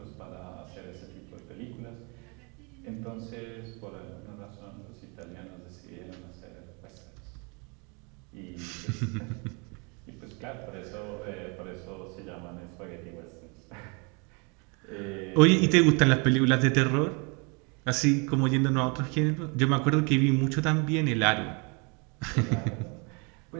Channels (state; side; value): quieter; left; 32.5 dB